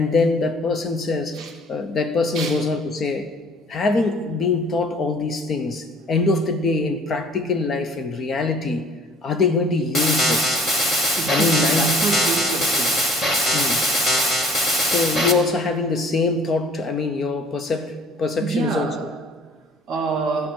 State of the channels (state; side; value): normal; both; correlation 0.53